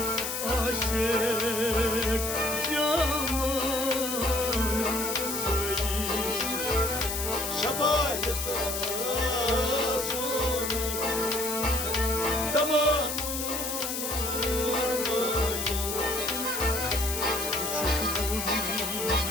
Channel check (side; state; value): left; noise; hiss, 3 dB below the sound